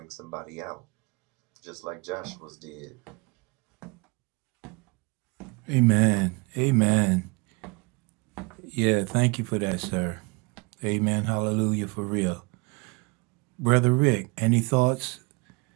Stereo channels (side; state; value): left; quieter; 28.5 dB